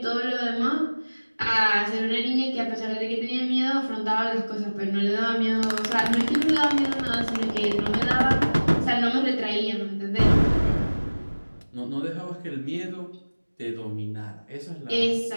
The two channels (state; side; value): inverted; both; correlation -1.00